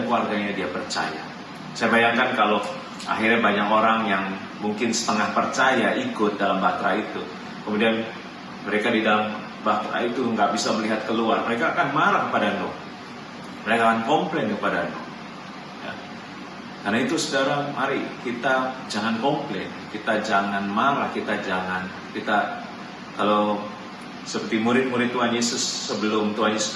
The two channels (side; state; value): both; identical; correlation 1.00